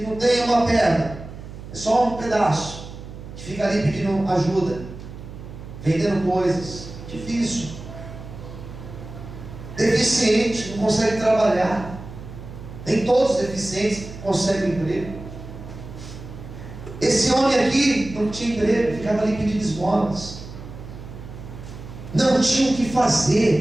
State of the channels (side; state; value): right; noise; hum, 13 dB below the sound